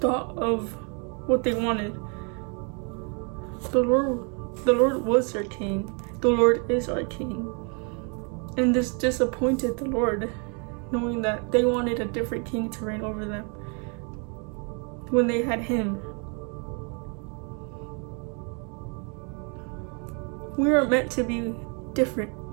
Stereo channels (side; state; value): left; quieter; 36.8 dB